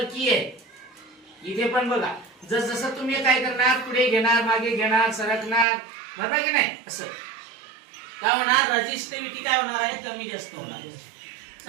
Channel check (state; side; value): drops out; left; at 5.7 s